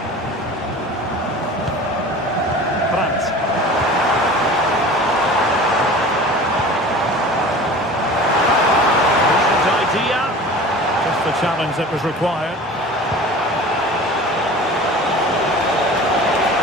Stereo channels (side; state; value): both; normal; correlation 0.39